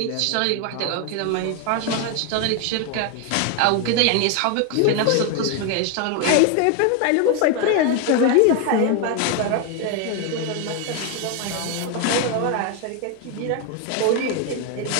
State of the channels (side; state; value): both; different; correlation 0.01